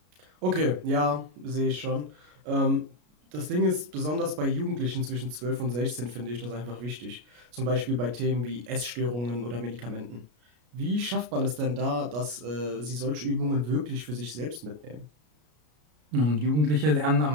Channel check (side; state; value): left; late; 33 ms